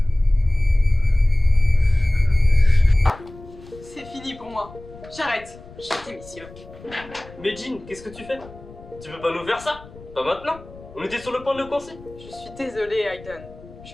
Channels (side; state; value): left; noise; rumble, 19 dB below the sound